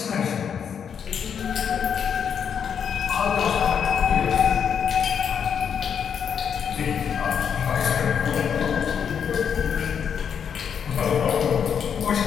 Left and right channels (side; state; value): right; quieter; 7.5 dB